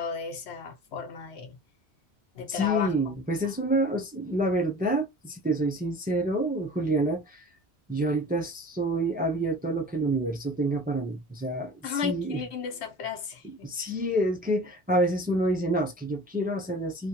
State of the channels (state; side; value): normal; both; correlation 0.40